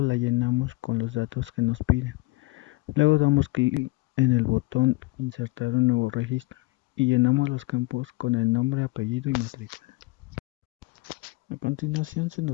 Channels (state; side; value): quieter; right; 23.4 dB